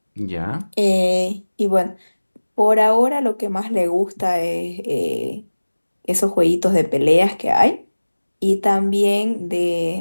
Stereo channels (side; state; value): both; inverted; correlation -1.00